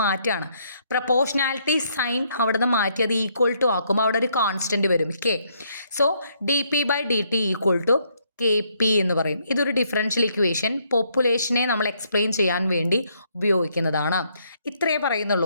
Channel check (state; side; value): inverted; both; correlation -0.71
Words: മാറ്റുകയാണ്. പ്രപ്പോർഷണാലിറ്റി സൈൻ അവിടെ നിന്ന് മാറ്റി അത് ഈക്വൽ ടു ആക്കുമ്പോൾ അവിടെ ഒരു കോൺസ്റ്റൻറ്റ് വരും, K. So dp/dt equal to KP എന്ന് പറയും. ഇതൊരു ഡിഫറൻഷ്യൽ ഇക്വേഷൻ പോപ്പുലേഷനെ നമ്മൾ എക്സ്പ്ലെയിൻ ചെയ്യാൻ വേണ്ടി ഉപയോഗിക്കുന്നതാണ്. ഇത്രയേ